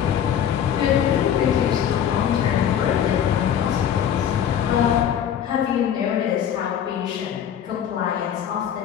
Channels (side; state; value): right; quieter; 9.3 dB